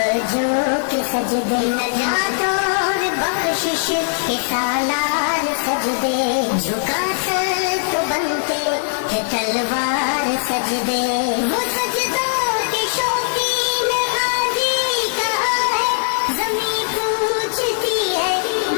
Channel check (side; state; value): right; silent; digital silence